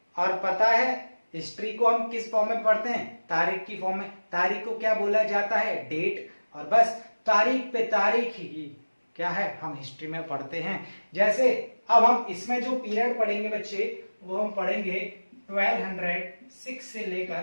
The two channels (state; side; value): inverted; both; correlation -1.00